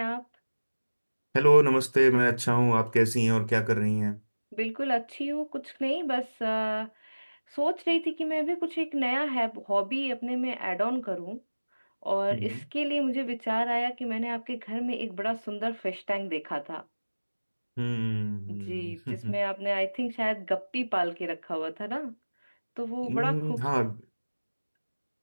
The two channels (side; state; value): both; inverted; correlation -1.00